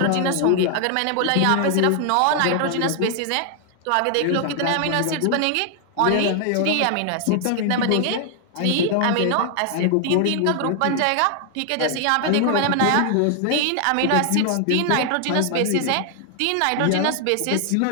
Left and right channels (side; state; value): both; different; correlation 0.00